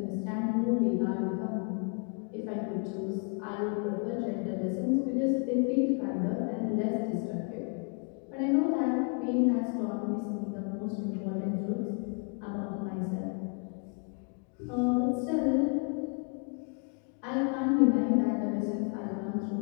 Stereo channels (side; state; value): right; quieter; 38.7 dB